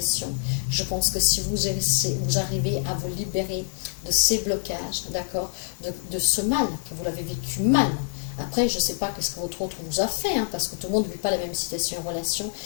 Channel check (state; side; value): silent; right; digital silence